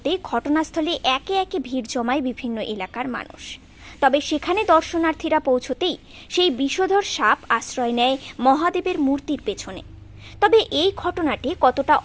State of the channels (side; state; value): both; identical; correlation 1.00